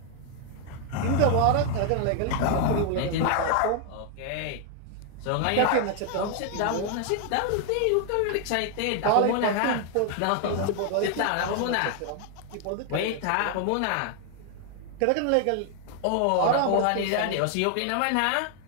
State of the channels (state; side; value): different; both; correlation 0.00